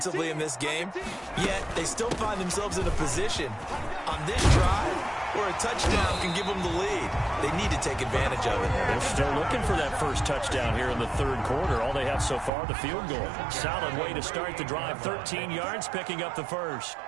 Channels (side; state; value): left; drops out; at 12.5 s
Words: in this game, yet they still find themselves in a position on this drive where a touchdown can give them the lead. They need to take advantage of it. They're still looking for that first touchdown here in the third quarter. All they have so far, the field goal. Solid way to start the drive. 13 yards, picking up the first.